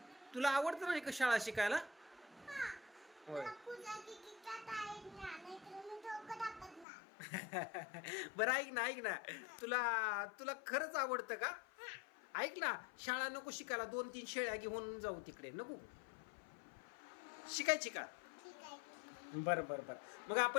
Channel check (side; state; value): right; drops out; at 6.9 s